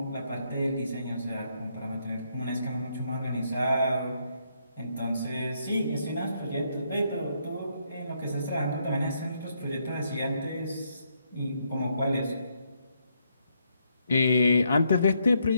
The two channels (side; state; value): both; inverted; correlation -0.76